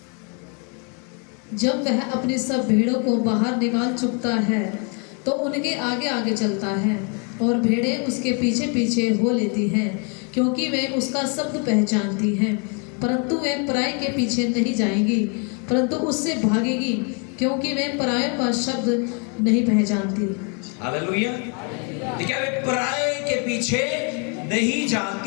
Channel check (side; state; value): right; quieter; 36.7 dB